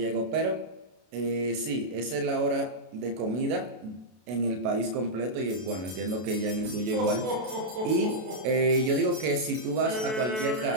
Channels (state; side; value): late; left; 32 ms